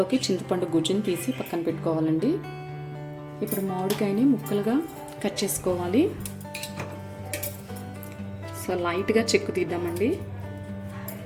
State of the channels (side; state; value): both; identical; correlation 1.00